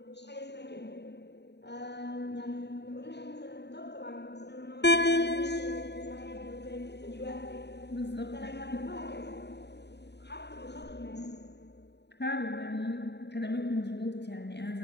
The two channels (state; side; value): late; right; 0.50 ms